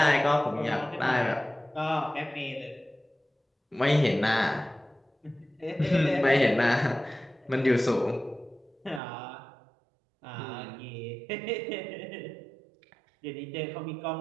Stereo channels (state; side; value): drops out; left; at 9.0 s